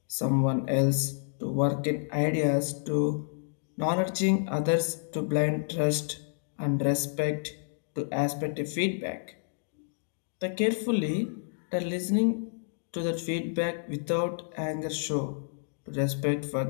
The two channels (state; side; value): silent; right; digital silence